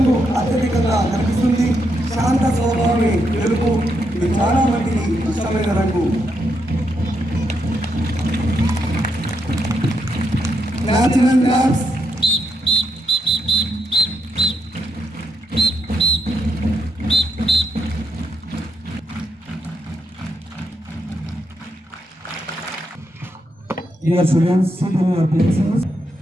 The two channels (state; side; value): normal; both; correlation 0.80